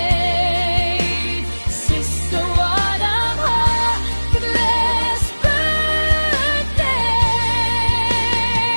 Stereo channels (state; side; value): inverted; both; correlation -1.00